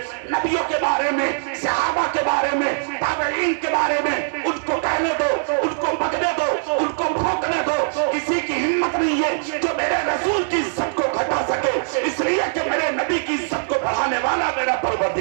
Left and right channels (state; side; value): silent; left; digital silence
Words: نبیوں کے بارے میں، صحابہ کے بارے میں، تابعین کے بارے میں، ان کو کہنے دو، ان کو پکڑنے دو، ان کو بھونکنے دو۔ کسی کی ہمت نہیں ہے جو میرے رسول کی عزت کو گھٹا سکے، اس لیے کہ میرے نبی کی عزت کو بڑھانے والا میرا